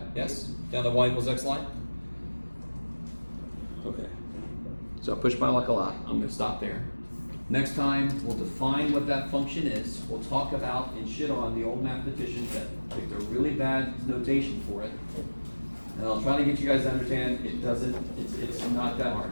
Yes? Down the y equals x line? Okay. So I pushed my luck a lot. I'm going to stop there. Next time, we'll define what that function is. We'll talk about and shit on the old mathematicians that picked a really bad notation for it. And I'll try to get you guys to understand it doesn't, it's not that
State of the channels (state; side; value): inverted; both; correlation -1.00